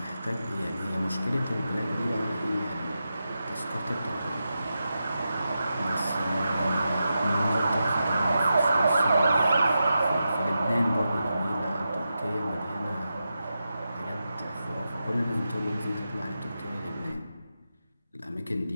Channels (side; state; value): both; inverted; correlation -0.89